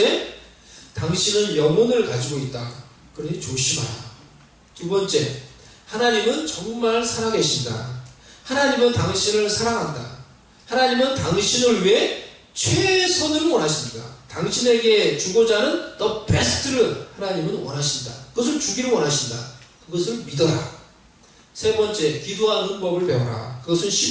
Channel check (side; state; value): both; identical; correlation 1.00